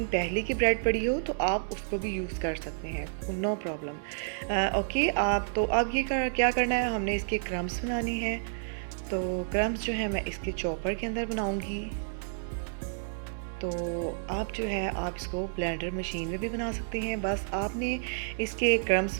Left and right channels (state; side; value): silent; left; digital silence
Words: पहले की ब्रेड पड़ी हो तो आप उसको भी यूज़ कर सकते हैं, नो प्रॉब्लम। ओके, आप तो अब क्या करना है, हमने इसके क्रम्स बनाने हैं। तो क्रम्स जो है मैं इसके चॉपर के अंदर बनाऊंगी। तो आप जो है आप इसको ब्लेंडर मशीन में भी बना सकते हैं, बस आपने इसके क्रम्स